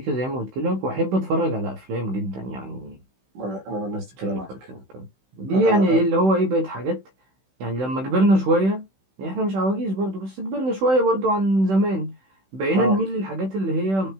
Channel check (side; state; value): left; late; 16 ms